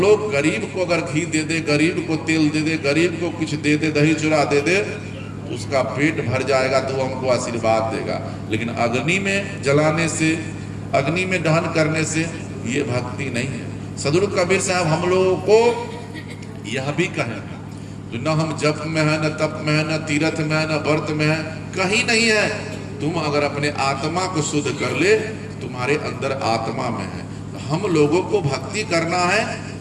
लोग गरीब को अगर घी दे दे, गरीब को तेल दे दे, गरीब को कुछ दे दे, दही चूड़ा दे दे, तो उसका पेट भर जाएगा, तो हमको आशीर्वाद देगा। लेकिन अग्नि में जलाने से, अग्नि में दहन करने से ये भक्ति नहीं है। सदगुरु कबीर साहब हम लोगों को यह भी कहें, तो न हम जप में है, न तप में है, न तीर्थ में है, न व्रत में है, कहीं नहीं है। तुम अगर अपने आत्मा को शुद्ध कर ले, तुम्हारे अंदर आत्मा में है। तो हम लोगों को भक्ति करना है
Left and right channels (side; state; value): both; identical; correlation 1.00